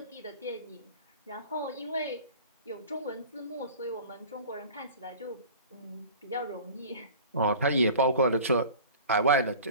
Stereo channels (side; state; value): both; inverted; correlation -0.41